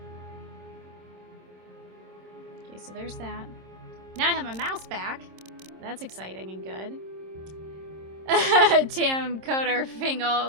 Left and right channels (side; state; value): left; late; 26 ms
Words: Okay, so there's that. Now I have my mouse back. That's exciting and good. Damn, KOTOR